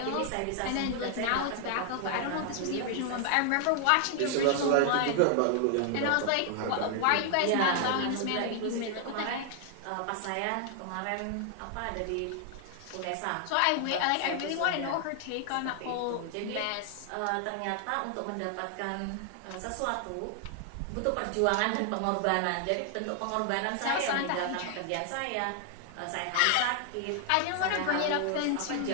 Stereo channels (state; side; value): different; both; correlation 0.00